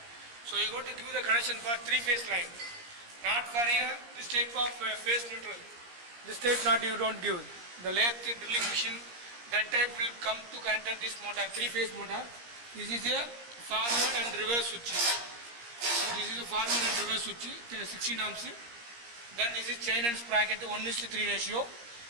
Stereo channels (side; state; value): left; late; 17 ms